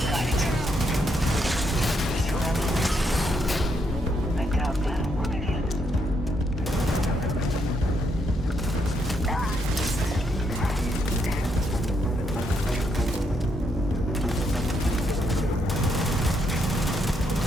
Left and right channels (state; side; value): normal; both; correlation 0.76